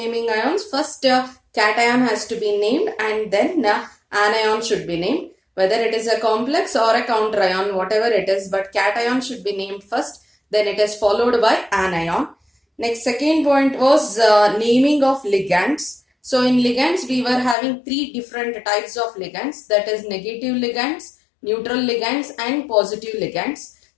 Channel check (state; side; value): drops out; right; at 17.6 s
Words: ions, first cation has to be named and then anion should be named. Whether it is a complex or a counter ion, whatever it is, but cation should be named first, then it is followed by anion. Next, second point was naming of ligands. So in ligands, we were having 3 different types of ligands, that is negative ligands, neutral ligands and positive ligands.